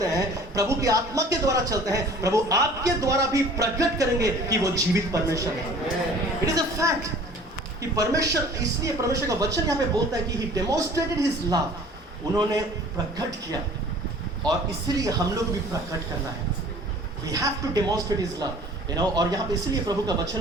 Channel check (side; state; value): both; normal; correlation 0.48